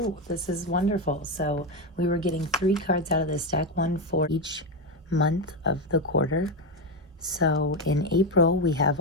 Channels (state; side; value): normal; both; correlation 0.11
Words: this is wonderful. So we were getting 3 cards out of this deck, one for each month of the quarter. So in April, we have